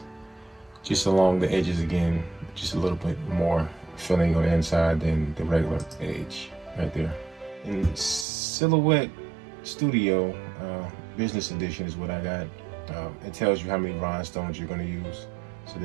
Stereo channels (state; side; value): drops out; left; at 8.2 s